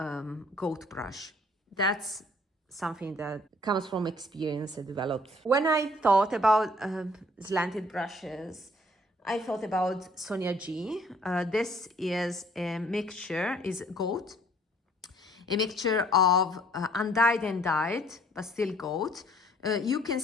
goat brush. That's something that comes from experience I developed. When I thought about slanted brushes, I thought about Sonia G. This is a mixture, is goat, a mixture of undyed and dyed, but still goat, You can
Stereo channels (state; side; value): normal; both; correlation 0.59